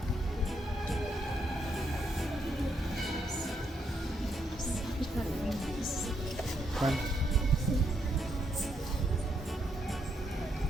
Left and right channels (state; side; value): normal; both; correlation 0.77